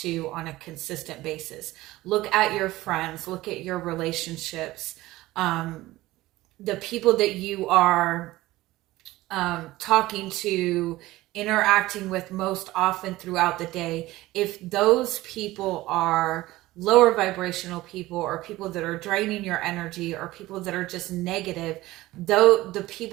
to on a consistent basis. Look at your friends, look at your relationships, the people that you are talking to, interacting with most often throughout the day. If those people are lower vibrational people, or people that are draining your energy, or people that are just negative, though the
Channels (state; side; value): quieter; left; 17.7 dB